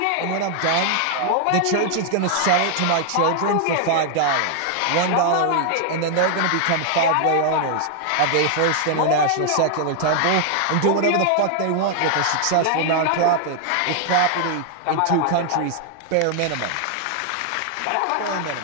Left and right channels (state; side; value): different; both; correlation 0.00